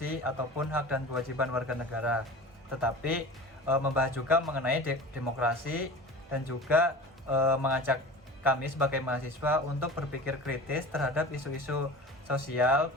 ataupun hak dan kewajiban warga negara, tetapi membahas juga mengenai demokrasi, dan juga mengajak kami sebagai mahasiswa untuk berpikir kritis terhadap isu-isu sosial,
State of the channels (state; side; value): normal; both; correlation 0.36